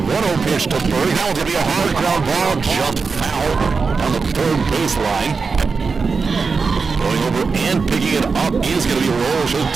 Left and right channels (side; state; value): left; quieter; 4.8 dB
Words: 1-0 pitch to Berg. Now it's going to be a hard ground ball, just foul down the third baseline. Going over and picking it up is going to be Roll. She'll